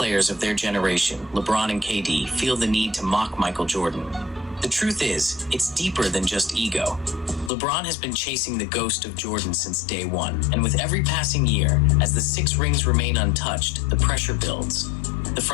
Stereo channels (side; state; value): right; drops out; at 7.5 s